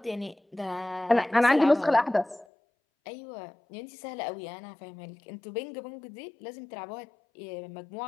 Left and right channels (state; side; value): drops out; right; at 2.5 s